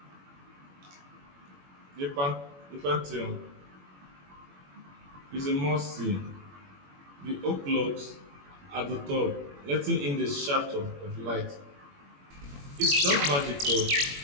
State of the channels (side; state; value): left; late; 21 ms